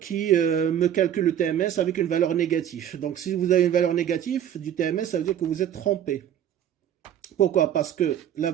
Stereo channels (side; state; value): left; quieter; 10.3 dB